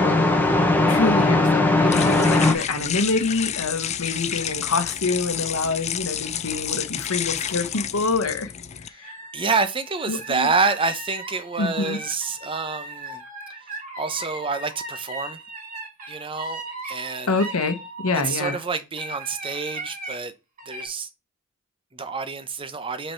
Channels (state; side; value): normal; both; correlation 0.31